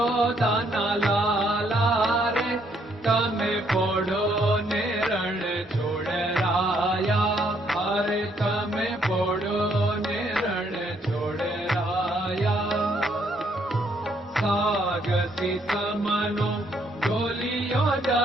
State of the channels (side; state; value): both; normal; correlation 0.70